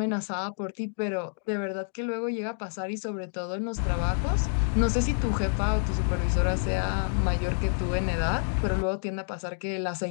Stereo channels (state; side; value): silent; right; digital silence